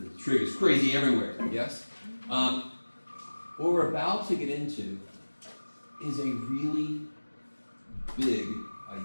trig is crazy everywhere, yes? What we're about to get into is a really big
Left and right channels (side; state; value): both; inverted; correlation -1.00